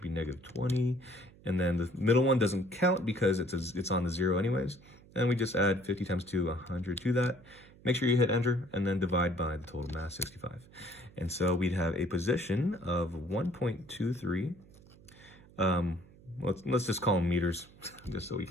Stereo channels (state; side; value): noise; right; hum, 24 dB below the sound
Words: be negative 20. And then the middle one doesn't count because it's on the 0 anyways. And we just add 50 times 2, 100 to that. Make sure you hit enter and then divide by the total mass, 65. And so we'd have a position of 1.23. Let's just call them meters, just so we